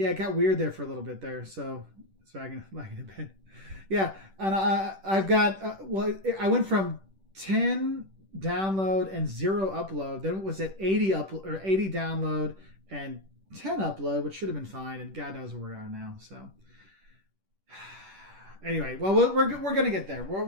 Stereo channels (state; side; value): late; left; 10 ms